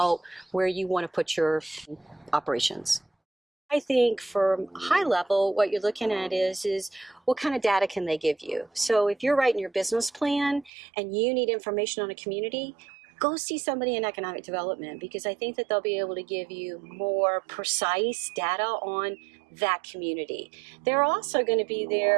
where you want to put your operations. I think from high level, what you're looking at is what kind of data can they give you? So if you're writing your business plan and you need information on a community, go see somebody in economic development, because I think that they'll be able to give you more precise data on that community. They're also going to be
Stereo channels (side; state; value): left; drops out; at 10.7 s